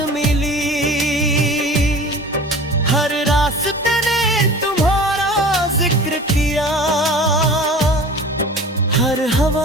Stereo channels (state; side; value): normal; both; correlation 0.40